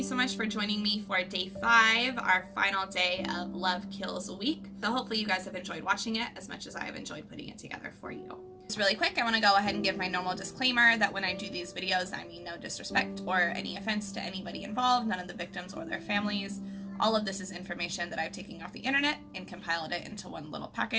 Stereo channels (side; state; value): both; identical; correlation 1.00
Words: so much for joining me for day 5, our final day of Love Kills Week. So hopefully you guys have enjoyed watching it as much as I have enjoyed putting it together for you. Just really quick, I want to go ahead and give my normal disclaimer that when I do these videos, I mean no disrespect or any offense to anybody involved, none of the victims or their families. All of this is information that I've taken off the internet and compiled it into one little